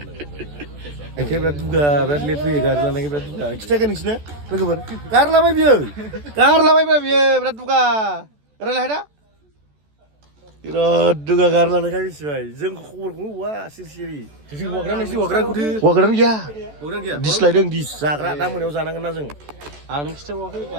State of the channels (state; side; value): late; left; 14 ms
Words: एखेबारे दुगा बिराद लेट फैयो गारि लानायनि बिराद दुगा खिथायाखै नोंसिनो लोगोफोर गारलाबाय बियो बिराद दुगा रायलाय दा बिराद दुगा गारि लानायखाय मिथिबाय जों खबरखौनो हौवा सिरि हौवाग्रान गैया दिस्लायदों दिस जाग्रा दा मोनायाव जानांगोन ना जों आं नों खिथाबावाखै